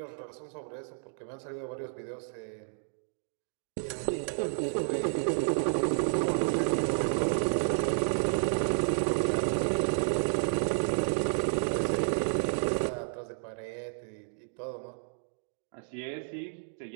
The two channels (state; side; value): silent; left; digital silence